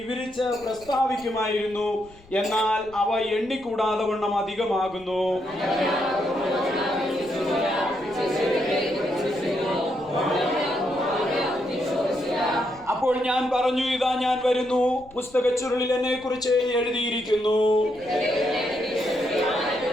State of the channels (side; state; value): left; noise; rumble, 25 dB below the sound